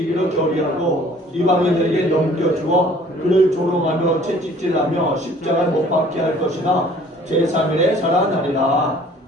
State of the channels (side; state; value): both; normal; correlation 0.53